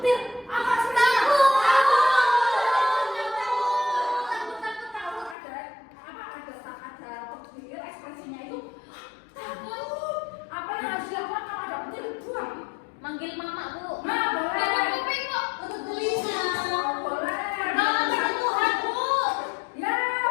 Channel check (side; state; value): right; drops out; at 5.4 s